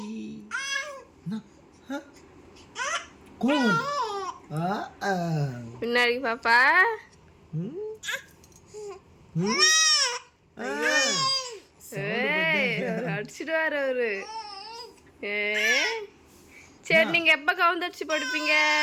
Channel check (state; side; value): identical; both; correlation 1.00